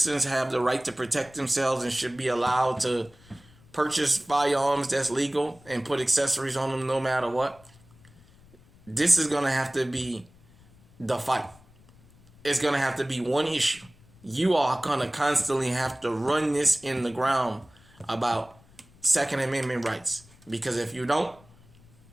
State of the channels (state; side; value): noise; left; rumble, 27 dB below the sound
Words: have the right to protect themselves and should be allowed to purchase firearms that's legal and put accessories on them no matter what, this is going to have to be the fight. It's going to have to be one issue. You are going to constantly have to run this in the ground about Second Amendment rights. Because if you don't,